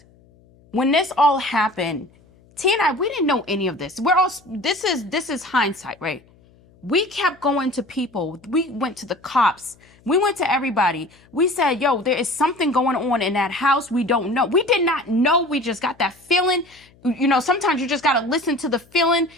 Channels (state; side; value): noise; left; hum, 29 dB below the sound